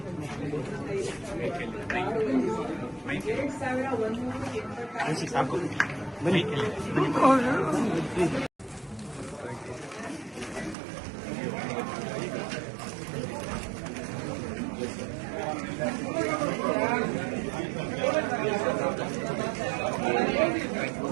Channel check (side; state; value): left; drops out; at 10.8 s